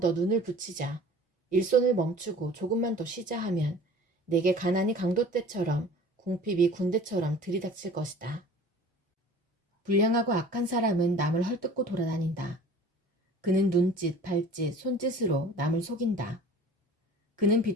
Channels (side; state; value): both; normal; correlation 0.45